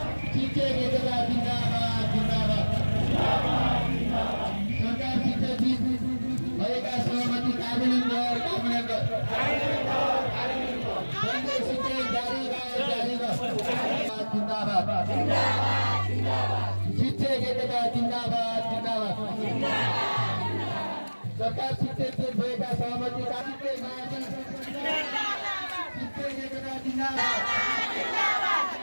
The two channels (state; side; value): inverted; both; correlation -1.00